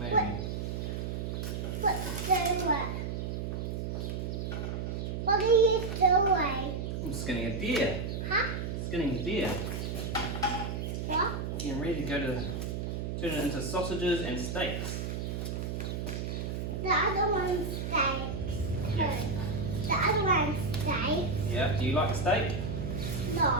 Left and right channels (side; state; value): right; noise; hum, 3 dB below the sound